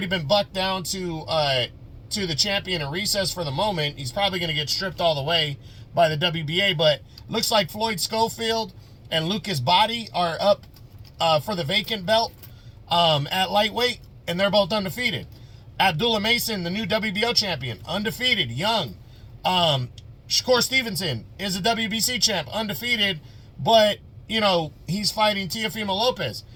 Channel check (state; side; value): identical; both; correlation 1.00